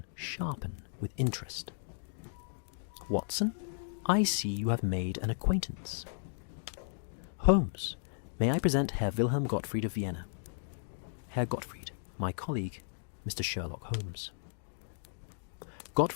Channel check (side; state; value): right; silent; digital silence